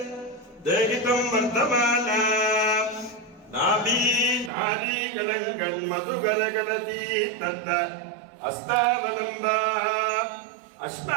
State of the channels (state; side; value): drops out; left; at 4.5 s